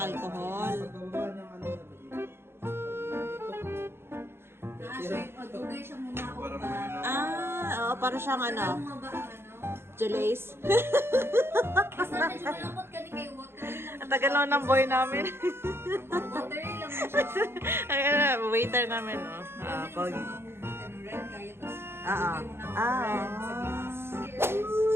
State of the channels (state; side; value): late; left; 0.11 ms